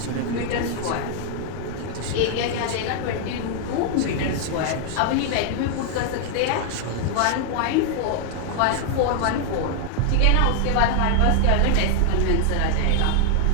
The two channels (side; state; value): both; different; correlation 0.00